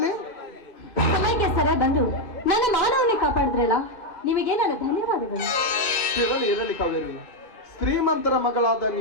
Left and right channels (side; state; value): right; late; 2.5 ms